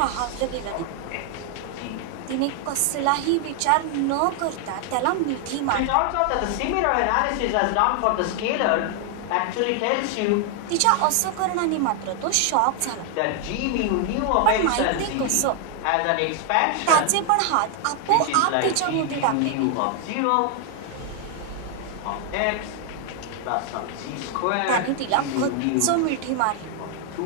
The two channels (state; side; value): different; both; correlation 0.00